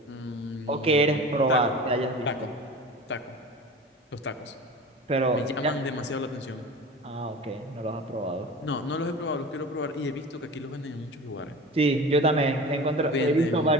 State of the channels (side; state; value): both; normal; correlation 0.35